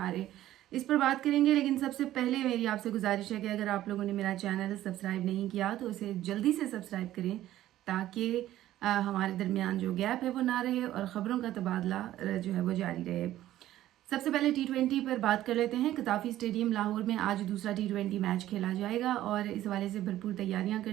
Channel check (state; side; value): quieter; left; 13.7 dB